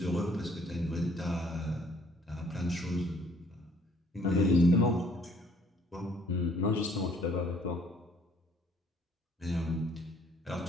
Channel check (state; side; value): normal; both; correlation 0.61